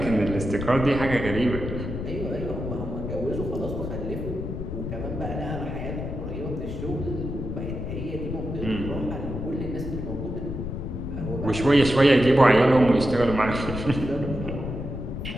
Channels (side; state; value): left; noise; rumble, 5 dB below the sound